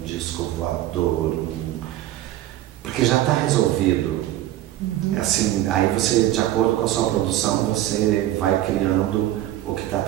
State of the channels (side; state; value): left; quieter; 13.9 dB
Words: disco voador, porque já está resolvido. Assim, aí você, de acordo com a sua produção, você vai criando o que está